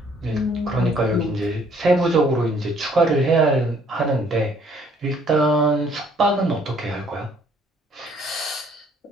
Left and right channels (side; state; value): both; normal; correlation 0.62